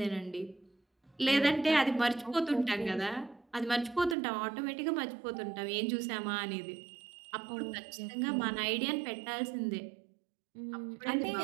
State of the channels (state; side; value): drops out; left; at 4.2 s